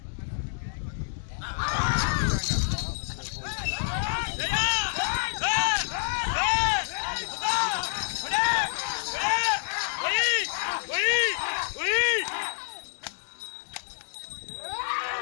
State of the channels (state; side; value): silent; right; digital silence